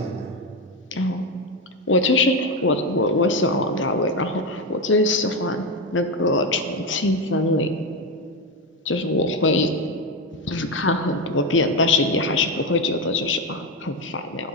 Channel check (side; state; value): both; normal; correlation 0.12